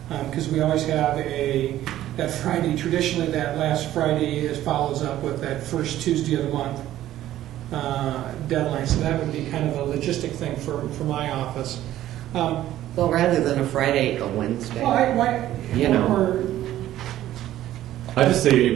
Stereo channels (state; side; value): quieter; left; 13.4 dB